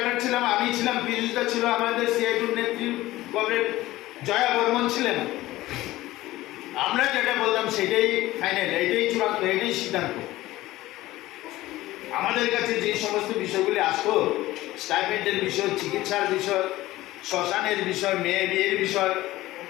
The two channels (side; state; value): right; quieter; 17.0 dB